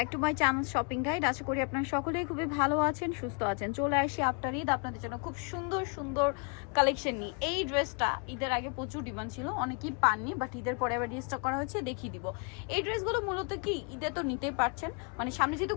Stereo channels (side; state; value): right; quieter; 37.1 dB